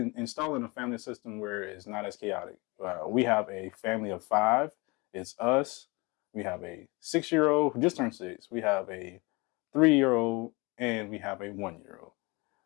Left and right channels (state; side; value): quieter; right; 26.3 dB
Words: installing a family system where it's not as chaotic. We have a family of 5. It's us. We have a 6-year-old who just turned 6. We have a 3-year-old, and we have a 1-year-old.